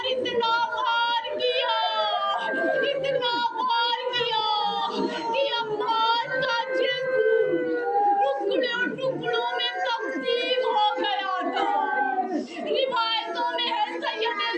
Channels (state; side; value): identical; both; correlation 1.00